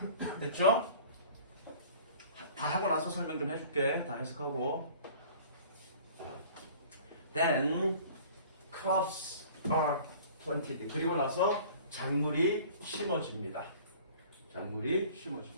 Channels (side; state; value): both; inverted; correlation -0.47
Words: 됐죠? 다 하고 나서 설명 좀 해줄게. 다 해석하고. Then crops are planted. 그리고 나서 작물이 심어집니다.